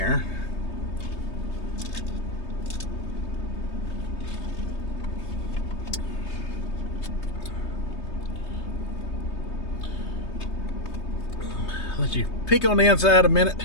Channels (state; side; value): late; right; 3.2 ms